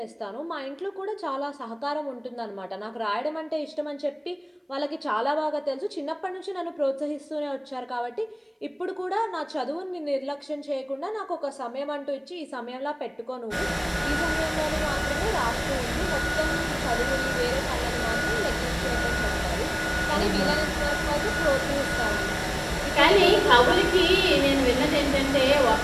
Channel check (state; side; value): identical; both; correlation 1.00